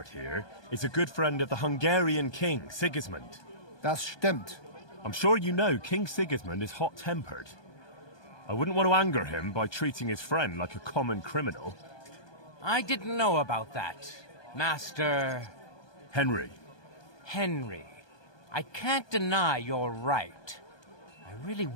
here is a good friend of the Hungarian king, Sigismund. Das stimmt. I'm sure you know King Sigismund is hot-tempered. I wouldn't want to anger him by treating his friend like a common criminal. I didn't know about that, Master... Henry. Henry. I can't deny you're right. I really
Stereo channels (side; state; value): right; late; 1.2 ms